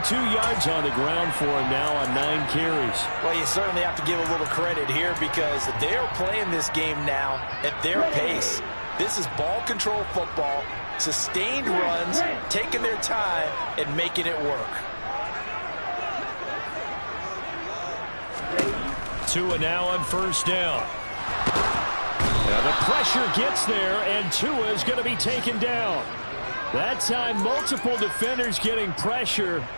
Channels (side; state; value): both; inverted; correlation -1.00